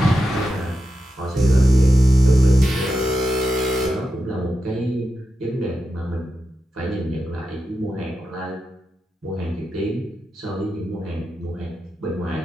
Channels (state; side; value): normal; both; correlation 0.89